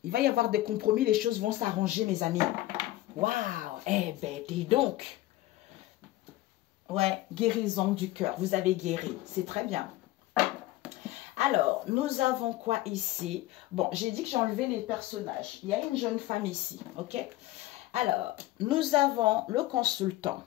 Il va y avoir des compromis. Les choses vont s'arranger, mes amis. Waouh! Eh ben, dis donc. Ouais, guérison du cœur. Vous avez guéri. C'est très bien. Alors, nous avons quoi ici? Bon, j'ai dit que j'ai enlevé les personnages. Il y a une jeune femme ici, ok? Alors, nous avons le consultant.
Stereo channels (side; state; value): right; quieter; 16.6 dB